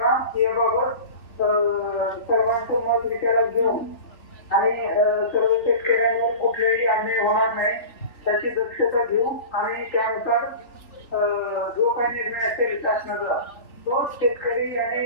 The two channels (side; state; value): right; late; 3.4 ms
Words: याबाबत सर्वांचं मत विचारात घेऊन आणि सर्व शेतकऱ्यांवर कुठलाही अन्याय होणार नाही त्याची दक्षता घेऊ आणि त्यानुसार जो काही निर्णय असेल शासनाचा तो शेतकरी